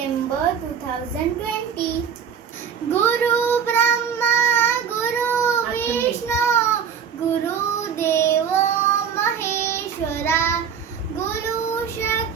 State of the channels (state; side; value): quieter; left; 7.5 dB